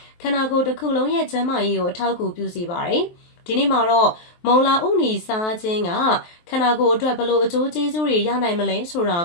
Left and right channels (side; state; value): right; late; 23 ms